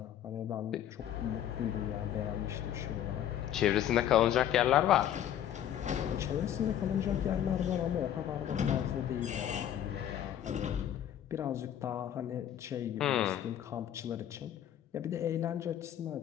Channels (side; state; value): right; quieter; 10.7 dB